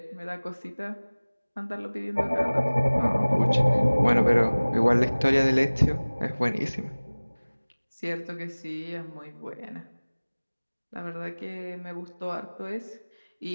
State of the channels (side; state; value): both; inverted; correlation -1.00